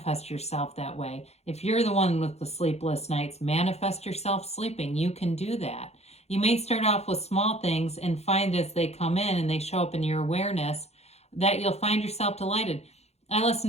yourself that way. If you're the one with the sleepless nights, manifest yourself sleeping. You can do that. You may start off with small things and find as they come in and they show up in your awareness that you'll find yourself delighted. I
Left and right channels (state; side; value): late; right; 0.31 ms